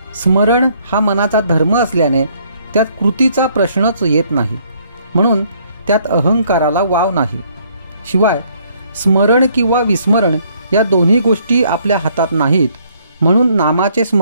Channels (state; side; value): inverted; both; correlation -0.65